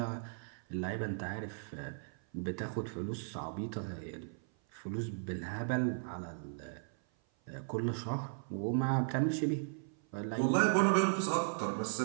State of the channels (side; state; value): left; silent; 53 dB below the other